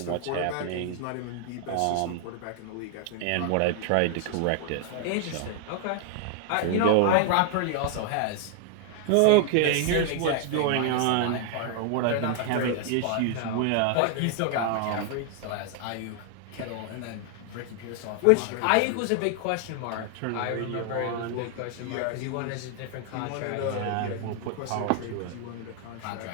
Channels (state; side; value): different; both; correlation 0.00